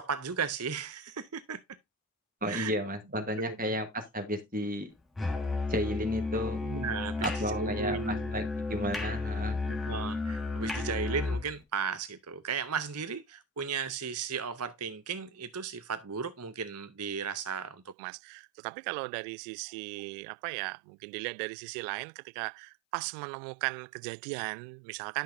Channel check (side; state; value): left; drops out; at 17.9 s